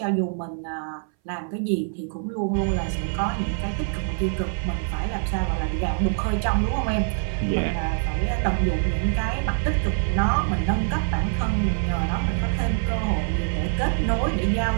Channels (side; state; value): left; silent; 61 dB below the other